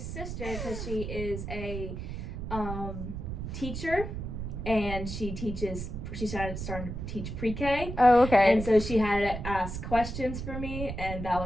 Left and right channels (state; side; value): noise; right; rumble, 6 dB below the sound